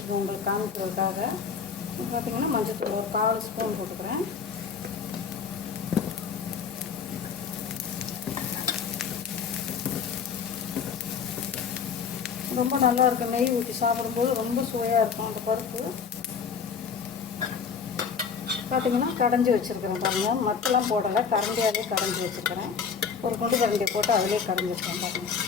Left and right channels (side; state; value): right; quieter; 6.3 dB